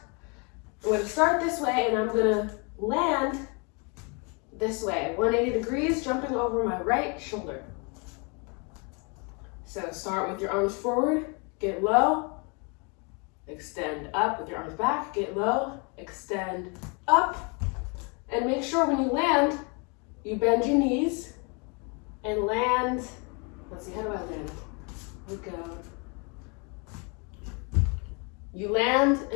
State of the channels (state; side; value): quieter; right; 33.2 dB